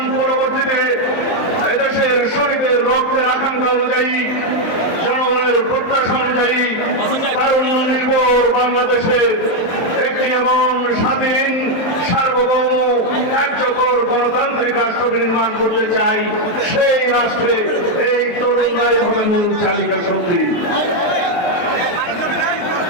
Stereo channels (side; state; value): right; late; 23 ms